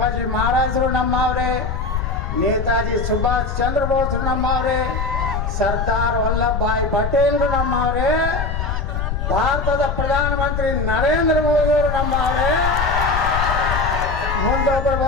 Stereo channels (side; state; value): left; noise; rumble, 2 dB below the sound